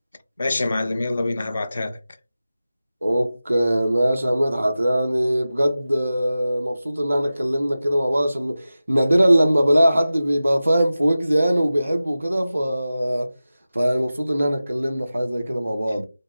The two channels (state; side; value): inverted; both; correlation -0.95